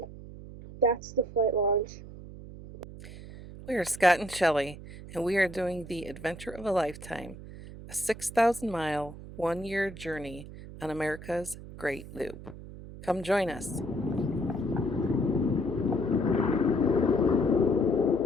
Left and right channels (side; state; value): right; noise; hum, 14 dB below the sound